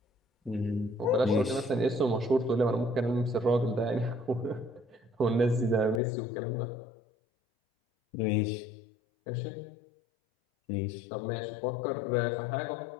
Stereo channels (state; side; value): drops out; right; at 6.0 s